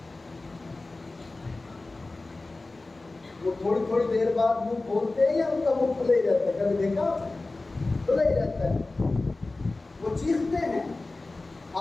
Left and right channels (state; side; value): quieter; right; 3.2 dB